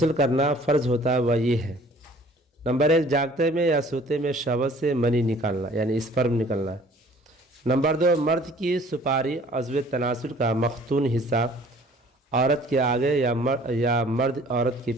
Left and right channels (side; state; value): both; normal; correlation 0.53